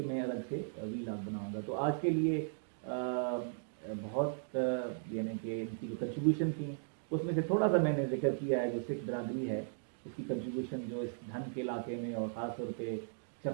मैं अलग से वीलॉग बनाऊंगा। तो आज के लिए बहुत यानी कि इनकी जो कंट्रीब्यूशन थी उसमें से थोड़ा सा मैंने जिक्र किया है। जो सिख बरादरी है उसकी कंट्रीब्यूशन जो इस धन के इलाके में और ख़ास तौर पे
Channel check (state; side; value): silent; left; digital silence